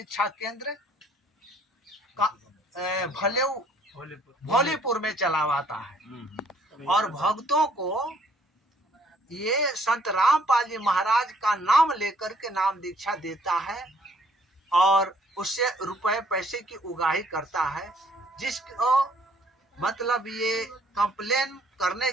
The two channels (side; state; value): both; normal; correlation 0.62